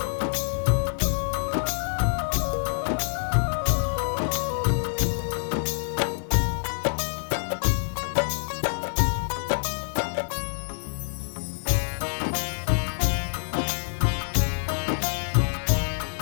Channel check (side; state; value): right; silent; 61 dB below the other